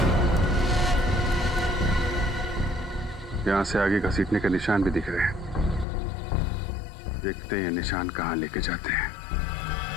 यहां से आगे घसीटने के निशान भी दिख रहे हैं। देखते हैं ये निशान कहां लेके जाते हैं।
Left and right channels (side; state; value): right; drops out; at 5.9 s